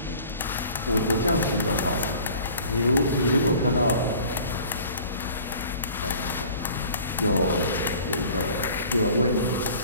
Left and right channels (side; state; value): both; inverted; correlation -0.48